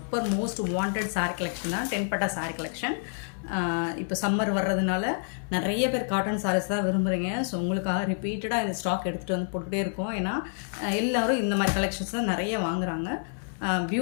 most wanted saree collection தான் 10 பட்டா saree collection. இப்போ சம்மர் வர்றதுனால நிறைய பேர் காட்டன் sarees தான் விரும்புறீங்க. ஸோ உங்களுக்காக ரிப்பீட்டடாக இந்த ஸ்டாக் எடுத்துகிட்டு வந்து போட்டுகிட்டே இருக்கோம். ஏன்னா எல்லாரும் இந்த மாதிரி கலெக்ஷன்ஸ் தான் நிறைய வாங்குறாங்க.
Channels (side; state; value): right; silent; digital silence